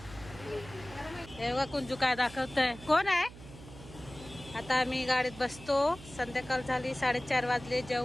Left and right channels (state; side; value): noise; right; hum, 17 dB below the sound